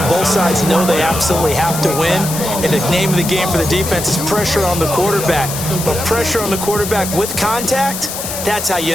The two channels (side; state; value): left; noise; hiss, 6 dB below the sound